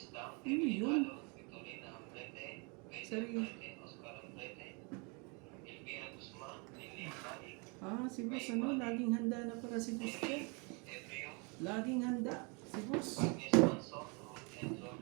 Dam, Ano Emily yun? Galo, Victorina Ambrete, Pedro Sorry. Ambrete, Oscar Ambrete, Elvira Guzman, Lilian Balik, Ah, si boss ano? Laging handa na para si boss ko. Ebrio, Laging handa. Si boss. Agnes Manson, Ruth and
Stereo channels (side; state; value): left; quieter; 32.0 dB